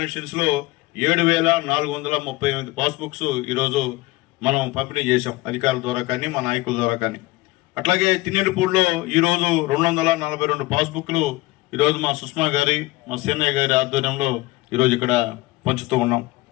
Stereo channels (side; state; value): right; quieter; 20.5 dB